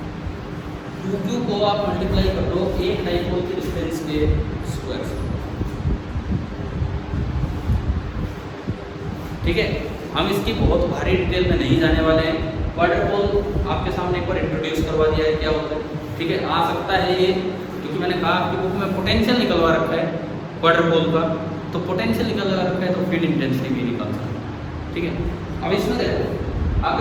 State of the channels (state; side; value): identical; both; correlation 1.00